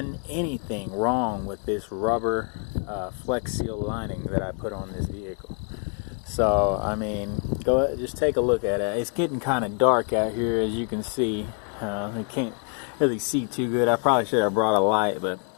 anything wrong with this rubber Flex Seal lining that I put on this vehicle. So I mean, go ahead, just take a look at it. It's getting kind of dark out here, as you can see. I can't really see too good. I probably should have brought a light, but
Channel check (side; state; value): right; quieter; 40.0 dB